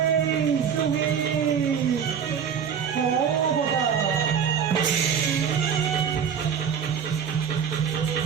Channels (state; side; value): quieter; left; 7.4 dB